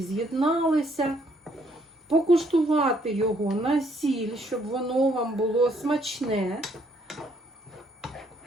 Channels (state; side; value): normal; both; correlation 0.68